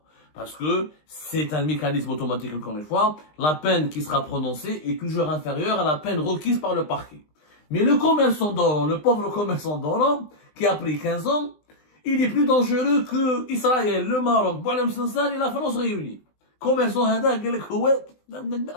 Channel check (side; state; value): right; late; 20 ms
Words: Parce que c'est un mécanisme automatique, encore une fois. La peine qui sera prononcée est toujours inférieure à la peine requise par le parquet. Mais le commerçant d'Oran, le pauvre commerçant d'Oran, qui a pris 15 ans, il est plus dangereux que Israël, le Maroc, Boualem Sansal et la France réunis. Commerçant hada,